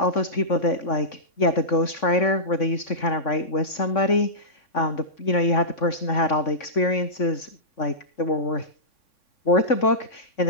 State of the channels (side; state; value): right; late; 3.6 ms